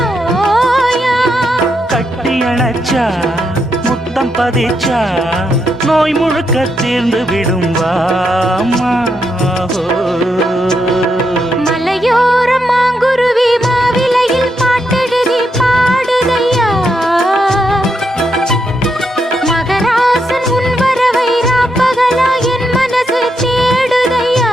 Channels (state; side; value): normal; both; correlation 0.81